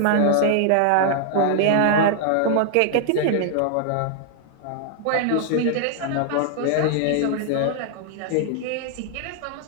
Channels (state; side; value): different; both; correlation 0.00